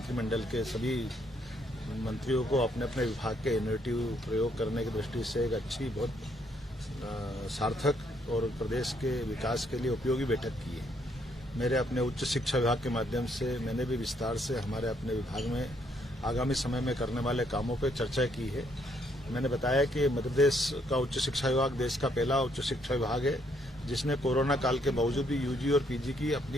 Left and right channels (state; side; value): normal; both; correlation 0.71